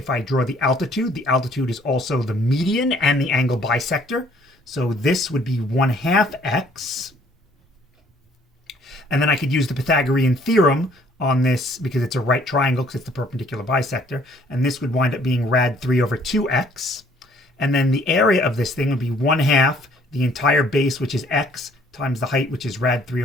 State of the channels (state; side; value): normal; both; correlation 0.60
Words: I draw the altitude is also the median and the angle bisector. So this would be 1/2 x. And then I could use the Pythagorean theorem on this because it's a right triangle because it's the perpendicular bisector. And this would wind up being rad 3 over 2x. And then the area of this thing would be 1/2 the entire base, which is x, times the height, which is rad 3